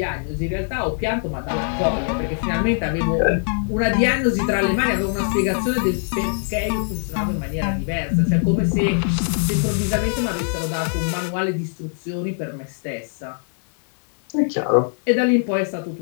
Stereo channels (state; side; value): silent; right; 64 dB below the other